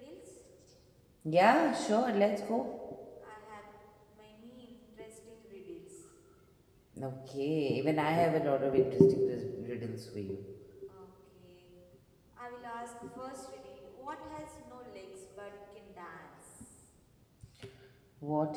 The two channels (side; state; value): both; identical; correlation 1.00